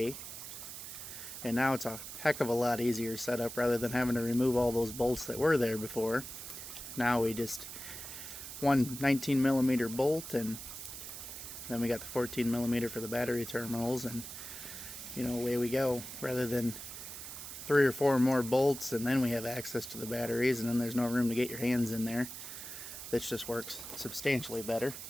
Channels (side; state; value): right; noise; hiss, 10 dB below the sound